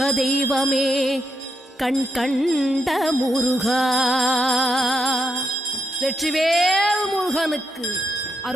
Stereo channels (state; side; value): normal; both; correlation 0.80